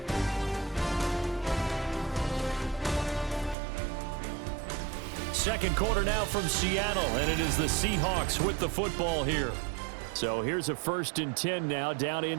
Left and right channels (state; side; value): drops out; left; at 3.6 s